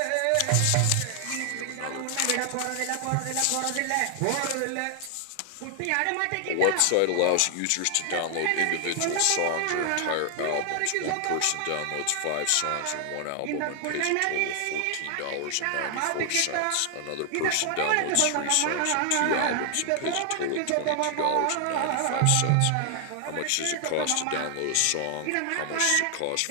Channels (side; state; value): both; different; correlation 0.00